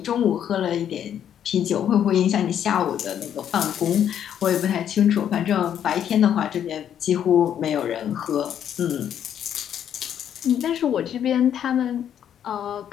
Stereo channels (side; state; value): right; quieter; 9.5 dB